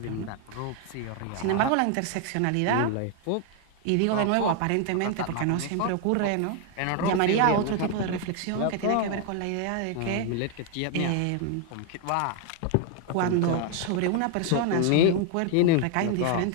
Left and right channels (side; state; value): both; different; correlation 0.00